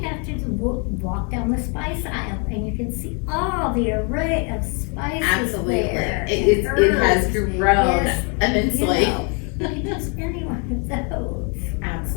have to do, walk down the spice aisle and you can see all the array of spices Absolutely, there. it has Herbs. grown Yes, immensely. You know, you can use any one of those.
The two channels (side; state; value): right; quieter; 36.0 dB